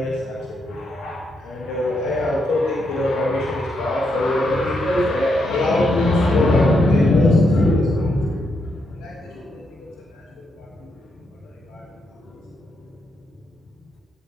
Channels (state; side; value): normal; both; correlation 0.80